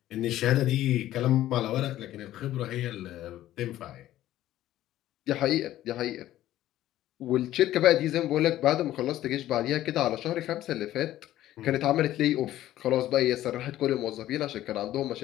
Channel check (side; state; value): right; quieter; 13.8 dB